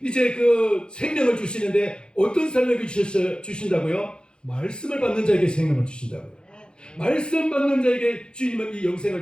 이제 그 생명을 주시는데, 어떤 사람에게 주신다고요? 말씀을 받는 자에게 생명을 주신다고요. 말씀 받는 자에게 주님은 이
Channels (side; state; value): right; late; 0.050 ms